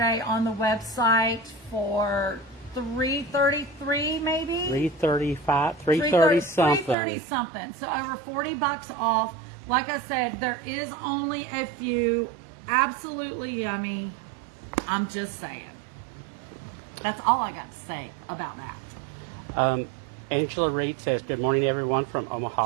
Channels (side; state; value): left; drops out; at 7.0 s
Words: on the website for $333 maybe? $335, $330 something. $330 something. So over $40 off. Like I said, there is only a few. Absolutely yummy. I'm just saying. That's all I got to say about that. Angela Reed says, good morning, everyone, from